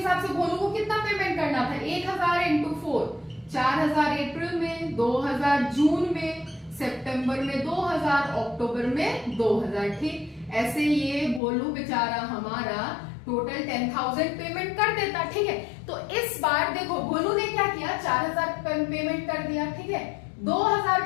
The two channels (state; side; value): drops out; right; at 11.4 s